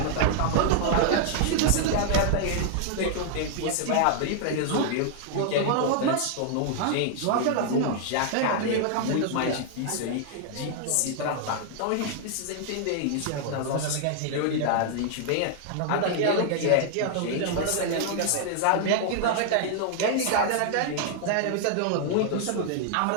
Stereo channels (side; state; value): both; different; correlation -0.01